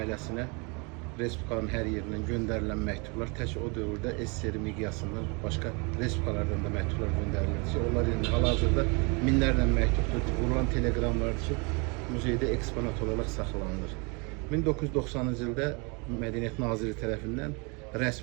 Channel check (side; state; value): left; quieter; 31.3 dB